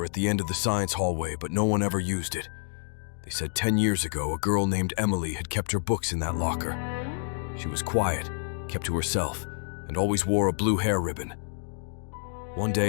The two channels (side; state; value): right; silent; digital silence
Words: at the end of the science hallway, but no one ever used it. They said 10 years ago, a girl named Emily had kept her books in that locker. She was quiet, kept to herself, and always wore a blue hair ribbon. One